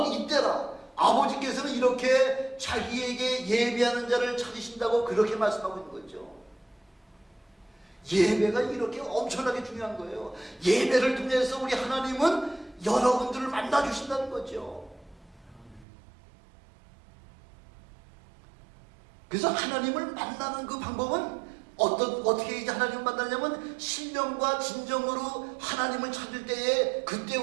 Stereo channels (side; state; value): left; drops out; at 15.9 s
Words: 이때라. 아버지께서는 이렇게 자기에게 예배하는 자를 찾으신다고 그렇게 말씀하고 있는 거죠. 예배가 이렇게 엄청나게 중요한 거예요. 예배를 통해서 우리 하나님은 여러분들을 만나주신다는 거죠. 그래서 하나님을 만나는 그 방법은 어떻게 이제 하나님을 만나냐면 신령과 진정으로 하나님을 찾을 때에 그때